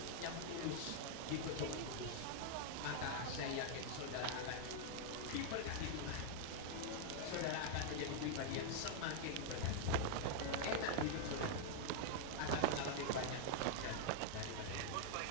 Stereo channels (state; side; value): different; both; correlation -0.01